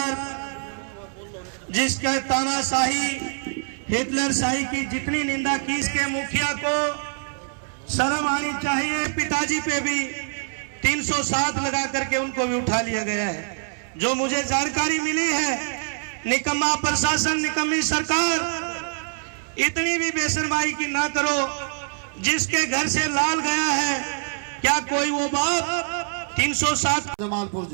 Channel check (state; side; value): silent; left; 62 dB below the other